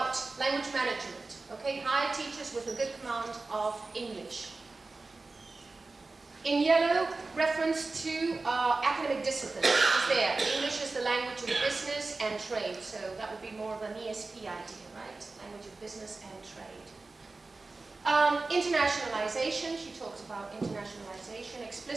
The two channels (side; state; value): left; quieter; 3.6 dB